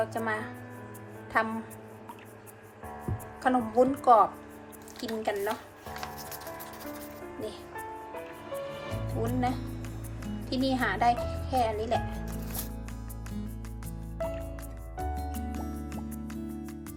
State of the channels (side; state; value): both; identical; correlation 1.00